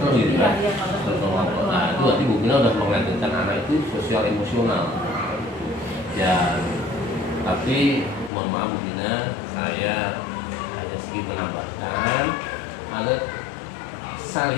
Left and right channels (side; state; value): right; drops out; at 8.3 s